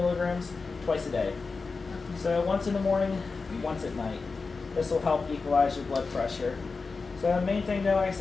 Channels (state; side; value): quieter; right; 4.3 dB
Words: twice a day. So once in the morning, once at night. This will help equalize your blood pressure. So the main thing, though, like I